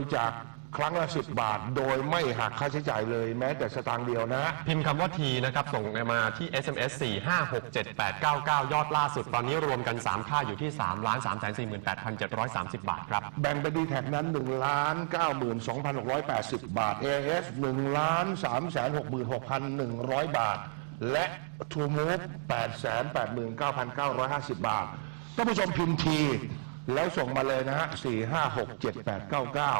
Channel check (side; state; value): left; silent; digital silence